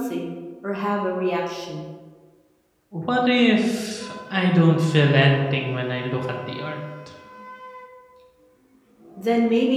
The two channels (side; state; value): both; identical; correlation 1.00